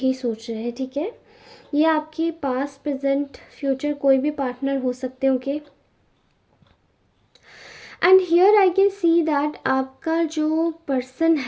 सोच रहे हैं, ठीक है। ये आपके पास्ट प्रेजेंट फ्यूचर कोई भी पार्टनर हो सकते हैं, okay. And here I can see that आपका जो पर्सन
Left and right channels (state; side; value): identical; both; correlation 1.00